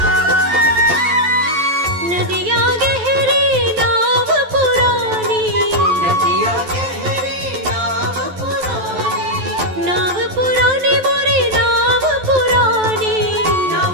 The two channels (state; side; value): late; left; 11 ms